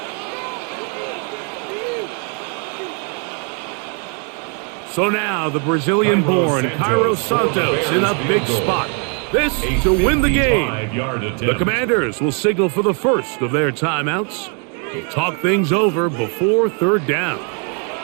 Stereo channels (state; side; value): quieter; left; 39.1 dB